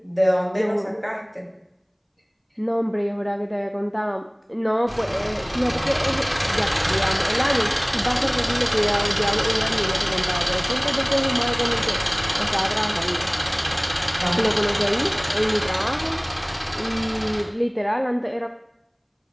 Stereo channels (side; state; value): both; identical; correlation 1.00